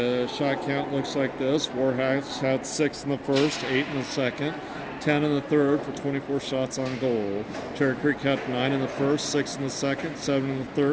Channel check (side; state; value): both; identical; correlation 1.00